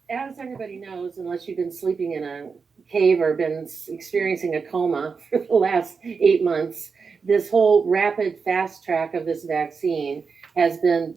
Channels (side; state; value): left; quieter; 5.3 dB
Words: as everybody knows, unless you've been sleeping in a cave or been experiencing a coma for the last 8 months, this whole rapid fast track of this vaccine has been